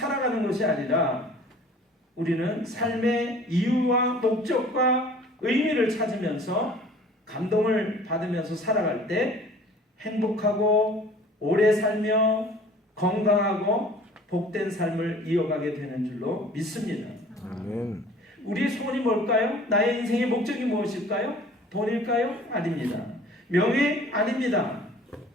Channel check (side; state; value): both; normal; correlation 0.49